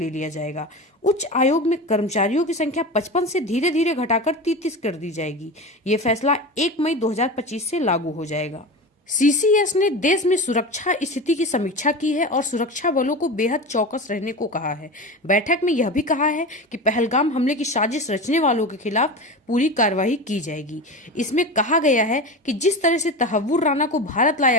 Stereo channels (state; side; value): normal; both; correlation 0.27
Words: लिया जाएगा। उच्च आयोग में कर्मचारियों की संख्या 55 से धीरे धीरे घटाकर 33 कर दी जाएगी। ये फैसला 1 मई 2025 से लागू हो जाएगा। CCS ने देश में सुरक्षा स्थिति की समीक्षा की है और सुरक्षा बलों को बेहद चौकस रहने को कहा है। बैठक में यह भी कहा है कि पहलगाम हमले की साजिश रचने वालों के खिलाफ पूरी कार्रवाई की जाएगी। इसमें कहा गया है कि जिस तरह से तहव्वुर राना को भारत